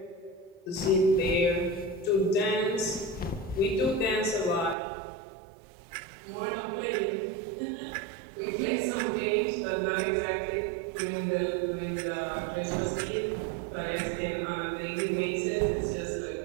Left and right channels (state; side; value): drops out; left; at 4.8 s